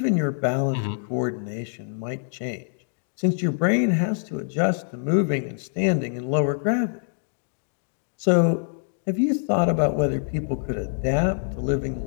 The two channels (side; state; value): right; silent; digital silence